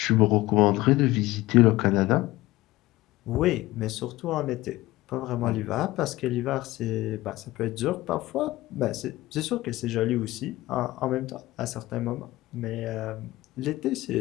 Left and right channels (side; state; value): right; quieter; 18.1 dB